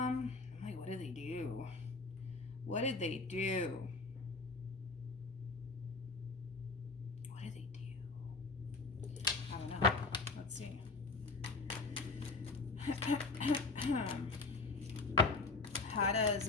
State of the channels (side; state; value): right; quieter; 3.8 dB